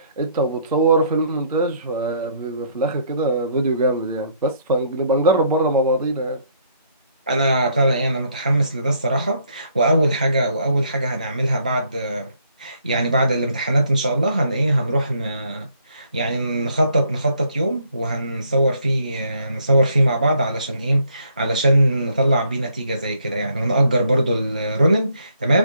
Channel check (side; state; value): both; inverted; correlation -0.68